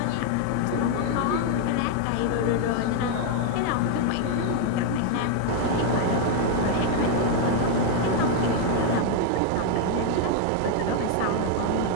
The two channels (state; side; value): different; both; correlation 0.00